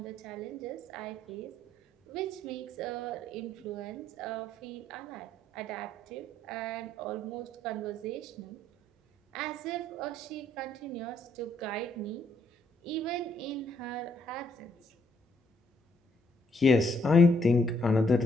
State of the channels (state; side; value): normal; both; correlation 0.70